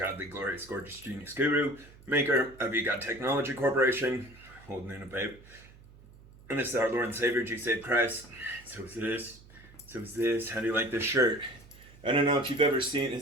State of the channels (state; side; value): noise; right; hum, 22 dB below the sound